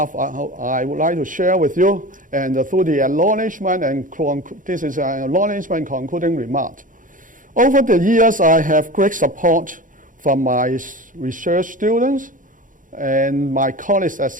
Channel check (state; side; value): late; left; 0.38 ms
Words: I would like to share with you, and through the acknowledgement and this is an acknowledgement concluding remark. Over the years, I have great support from my research students and my colleagues at